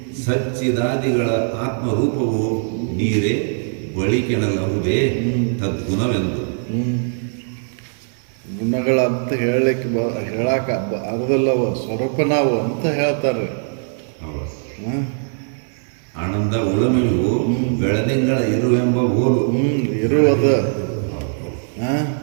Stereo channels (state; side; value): silent; left; 57 dB below the other